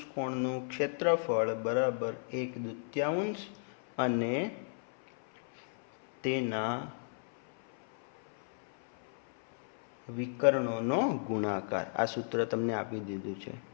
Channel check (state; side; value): silent; right; 55 dB below the other